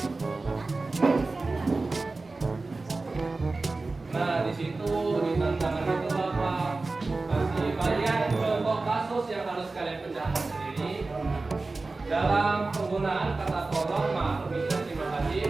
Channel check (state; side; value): quieter; left; 3.5 dB